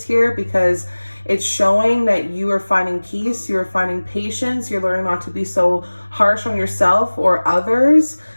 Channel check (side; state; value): both; inverted; correlation -1.00